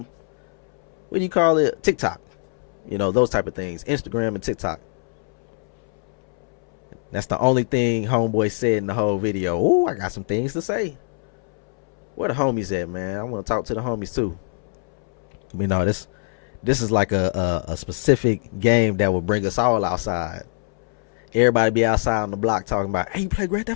What do you call it? TikTok. Those type of things. Instagram and TikTok. That's the only thing homeboy said in the whole video. Oh, I got some things to say. Where the homies at, man? I want to talk to the homies too. This is like a specific game that will bring us all outside. Everybody be outside on the block talking about, hey, you play Grand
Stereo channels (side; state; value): right; silent; 63 dB below the other